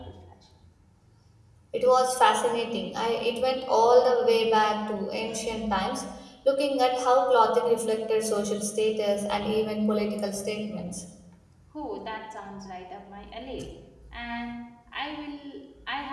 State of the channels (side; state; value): both; identical; correlation 1.00